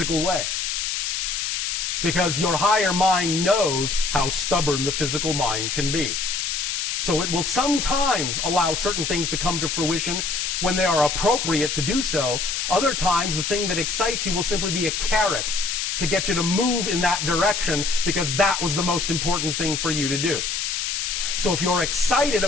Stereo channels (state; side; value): noise; left; hiss, 1 dB below the sound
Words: way. Because your higher mind knows how stubborn the physical mind can be. So it will sometimes allow certain things to come to fruition when they are appropriate to do so. Other times, the thing that excites you will simply be a carrot to get you to move in that direction because that was the most important thing for you to do. So if you're excited